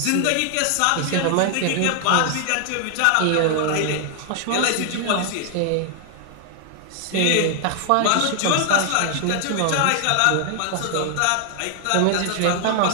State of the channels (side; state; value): both; different; correlation 0.00